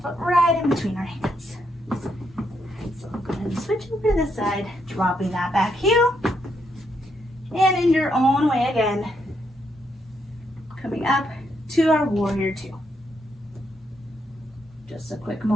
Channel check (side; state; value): both; normal; correlation 0.78